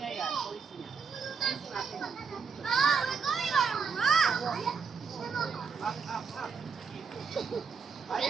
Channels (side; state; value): left; quieter; 5.6 dB